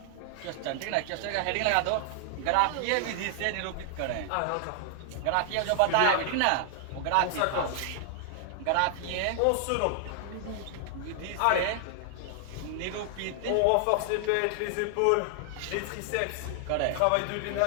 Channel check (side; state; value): both; different; correlation 0.00